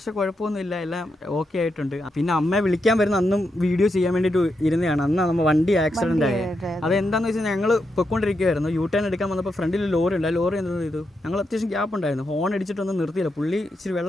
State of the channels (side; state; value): both; normal; correlation 0.84